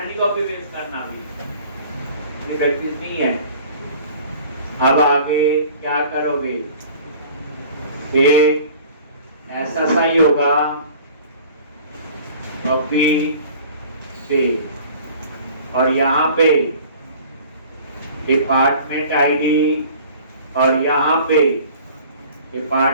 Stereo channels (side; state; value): both; inverted; correlation -0.47